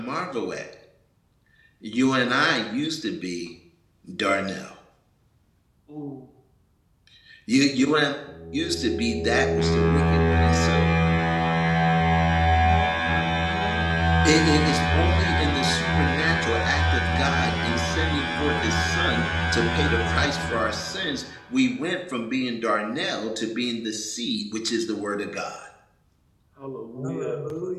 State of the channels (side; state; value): both; identical; correlation 1.00